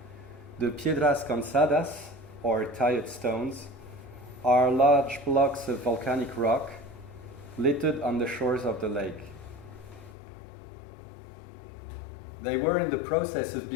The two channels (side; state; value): right; drops out; at 10.2 s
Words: The piedras cansadas, or tired stones, are large blocks of volcanic rock littered on the shores of the lake. They were in the process of